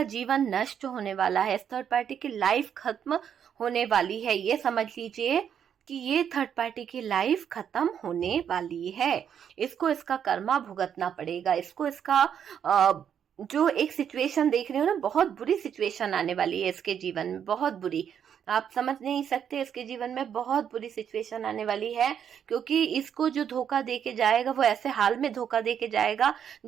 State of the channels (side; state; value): left; quieter; 8.5 dB